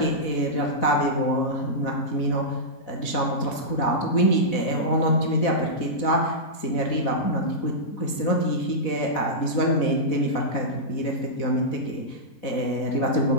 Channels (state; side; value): late; right; 4.1 ms